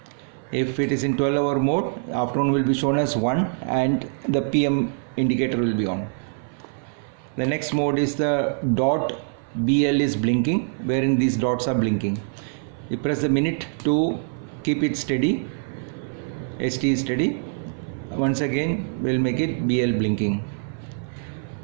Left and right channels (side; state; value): left; silent; 56 dB below the other